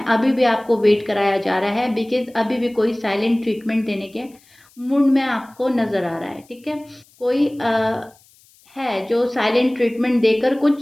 अभी भी आपको वेट कराया जा रहा है, बिकॉज अभी भी कोई साइलेंट ट्रीटमेंट देने के मूड में आपको नज़र आ रहा है। ठीक है, कोई है जो साइलेंट ट्रीटमेंट देकर कुछ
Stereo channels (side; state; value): left; noise; hiss, 30 dB below the sound